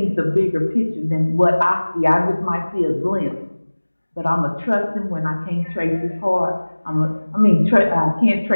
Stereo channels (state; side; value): inverted; both; correlation -1.00